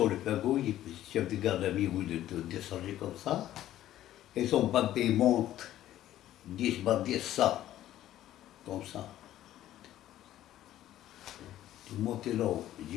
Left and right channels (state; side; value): quieter; right; 13.1 dB